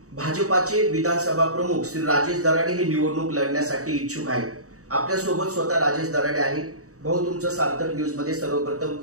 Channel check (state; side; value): late; left; 0.65 ms